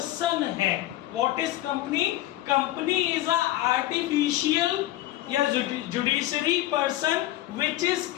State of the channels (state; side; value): quieter; right; 15.4 dB